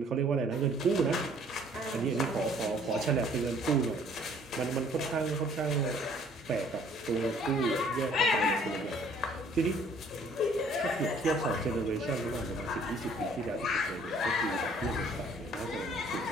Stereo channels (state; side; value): normal; both; correlation 0.58